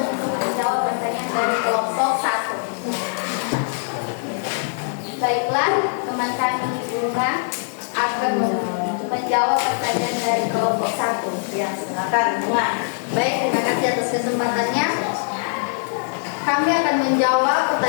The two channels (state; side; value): silent; right; digital silence